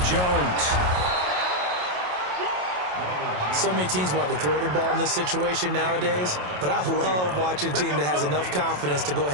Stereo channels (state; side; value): late; left; 27 ms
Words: Jones. So many teams want to throw the ball in this situation nowadays, but I love watching a team that has enough confidence to go